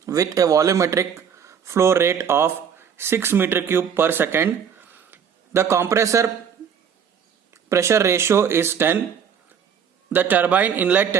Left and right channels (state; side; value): quieter; left; 7.5 dB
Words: with a volumetric flow rate of 6 meter cube per second. The compressor pressure ratio is 10. The turbine inlet